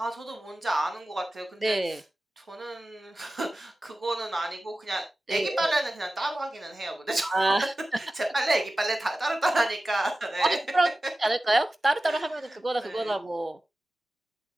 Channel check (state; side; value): normal; both; correlation 0.95